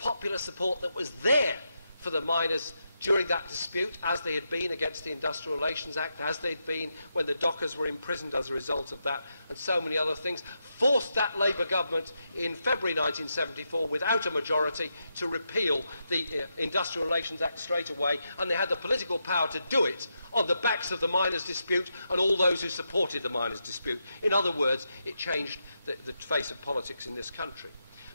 support that was there for the miners during that dispute, as they had been against the Industrial Relations Act, as they'd been when the dockers were imprisoned as a result of that, and so many other things, forced that Labour government in February 1974, without a majority, to repeal the Industrial Relations Act straight away, and they had the political power to do it on the backs of the miners' dispute and all those who supported the miners' dispute. In other words, it changed the face of politics in this country.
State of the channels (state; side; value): inverted; both; correlation -0.84